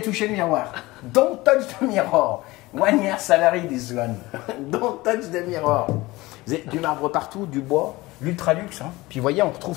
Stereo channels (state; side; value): quieter; right; 20.3 dB